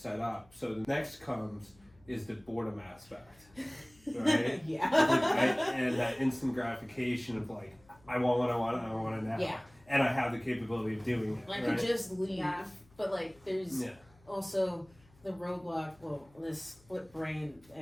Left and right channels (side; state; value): left; noise; hum, 28 dB below the sound